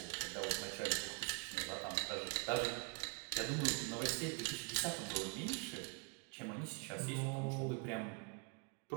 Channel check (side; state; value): left; quieter; 34.9 dB